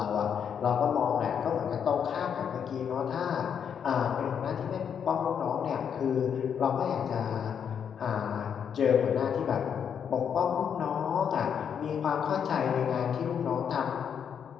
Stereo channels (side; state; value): right; quieter; 7.7 dB